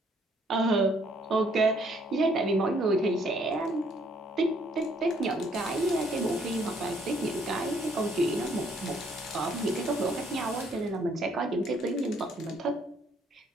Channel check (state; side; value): normal; both; correlation 0.66